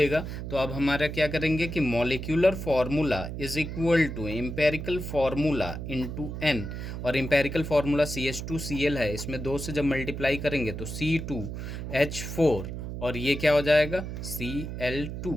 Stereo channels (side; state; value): right; noise; hum, 6 dB below the sound